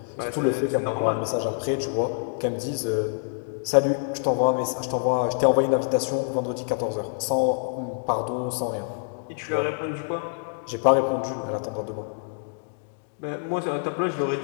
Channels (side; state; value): right; silent; digital silence